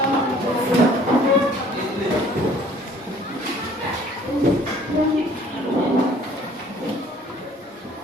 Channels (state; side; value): normal; both; correlation 0.55